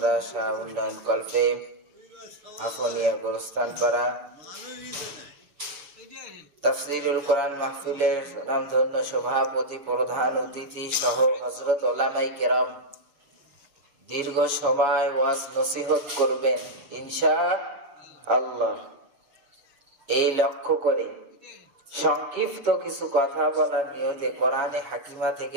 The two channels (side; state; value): left; late; 6.9 ms